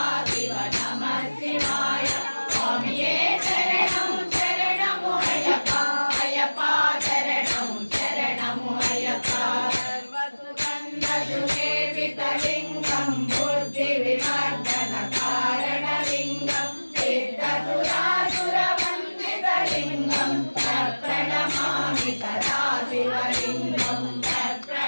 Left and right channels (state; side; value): inverted; both; correlation -1.00